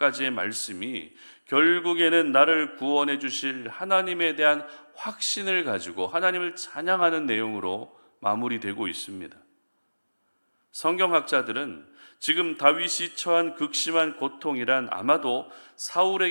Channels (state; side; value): inverted; both; correlation -1.00